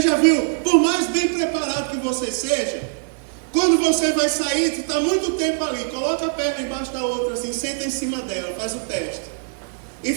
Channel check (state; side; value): silent; left; 64 dB below the other